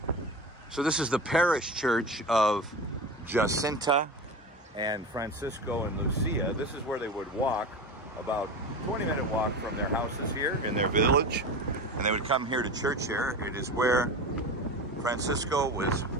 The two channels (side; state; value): both; normal; correlation 0.28